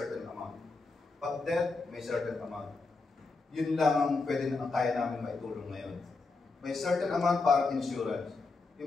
amount. Pag death, may certain amount. Yun lang ang pwede na kaya namin maitulong ngayon. May certain amount para insurance.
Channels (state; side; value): quieter; right; 3.8 dB